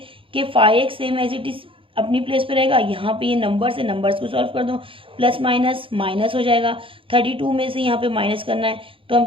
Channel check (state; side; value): late; left; 0.26 ms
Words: कि 5x same as it is अपनी प्लेस पे रहेगा, यहाँ पे ये नंबर्स है, नंबर्स को सॉल्व कर दो, प्लस माइनस माइनस हो जाएगा, 32 में से यहाँ पे माइनस करना है तो हम